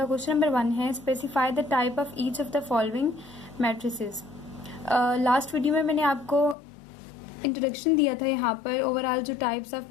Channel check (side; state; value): right; drops out; at 6.6 s